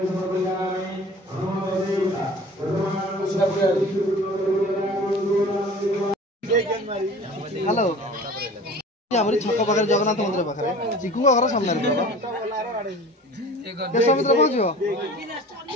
हेलो हमरी छक पाखरे जगन्नाथ मंदिर पाखरे चिकू घर सामने रे देश मित्र पहुंचो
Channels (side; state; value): both; normal; correlation 0.43